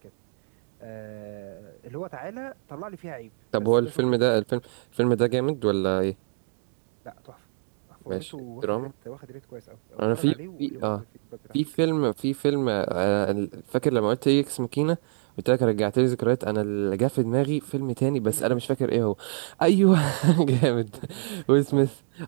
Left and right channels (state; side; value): silent; left; digital silence